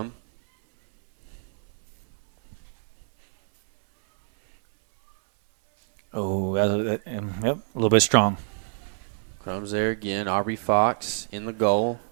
Oh, yep, a little bit strong. Crum's there again. Aubrey Fox in the goal.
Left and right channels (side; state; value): left; silent; 61 dB below the other